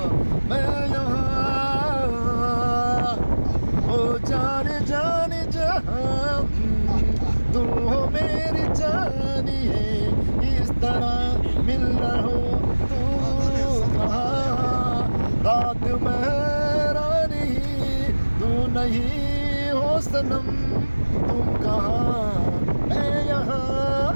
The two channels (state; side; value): inverted; both; correlation -1.00